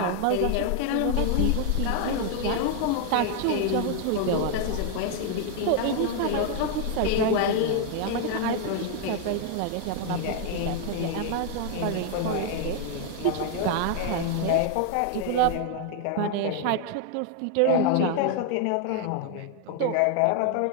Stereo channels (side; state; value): both; different; correlation 0.00